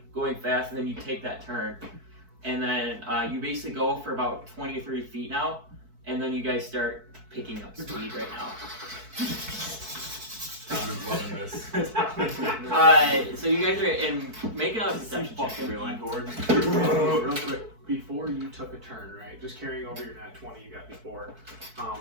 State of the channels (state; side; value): late; left; 4.6 ms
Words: going fast, and then you take that turn, and then you basically go for about 20 or 30 feet now, and then you guys start picking up speed right now. Connor's loving this. So you guys are in making a perception check, everyone. Real quick, before you took a turn, right? Just carrying over your nat 20 you got before.